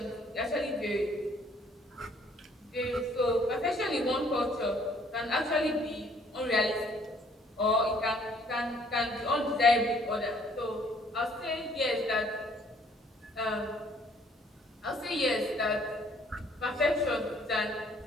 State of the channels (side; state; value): both; normal; correlation 0.61